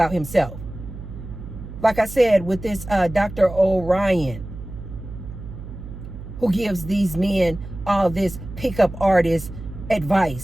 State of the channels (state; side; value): noise; right; hum, 12 dB below the sound